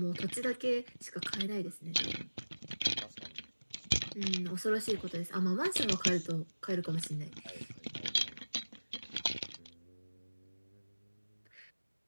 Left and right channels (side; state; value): both; inverted; correlation -1.00